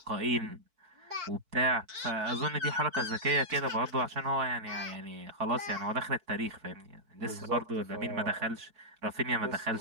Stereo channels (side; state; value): left; late; 4.5 ms